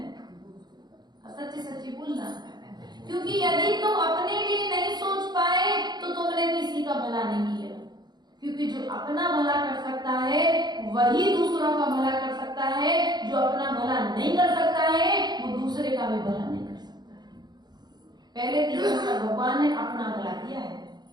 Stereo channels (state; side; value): late; left; 0.20 ms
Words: सच्ची सच्ची बोलना, क्योंकि यदि तुम अपने लिए नहीं सोच पाए तो तुमने किसी का भला नहीं किया, क्योंकि जो अपना भला कर सकता है वही दूसरों का भला कर सकता है, जो अपना भला नहीं कर सकता है वो दूसरे का भी भला नहीं कर सकता है। पहले भगवान ने अपना भला किया है,